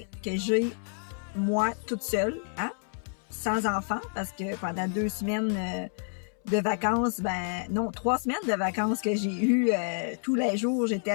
que j'ai moi toute seule, hein, sans enfant, parce que pendant 2 semaines de vacances, 3 semaines de vacances que j'ai eu tous les jours, j'étais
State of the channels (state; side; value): silent; right; 59 dB below the other